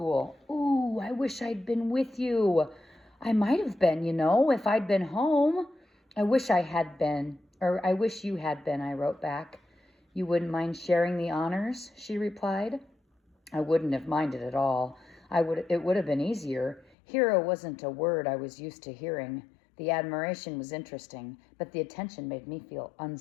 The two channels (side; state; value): right; drops out; at 16.9 s